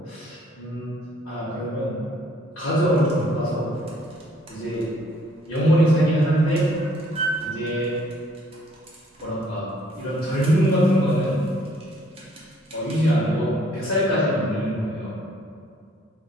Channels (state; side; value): normal; both; correlation 0.63